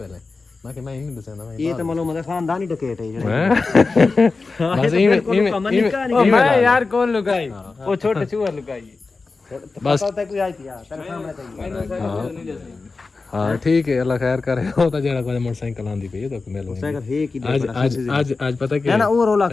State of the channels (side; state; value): right; quieter; 4.0 dB